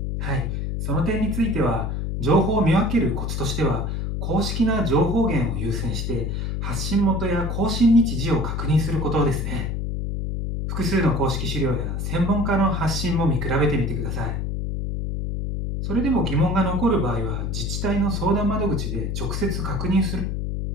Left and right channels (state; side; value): noise; left; hum, 2 dB below the sound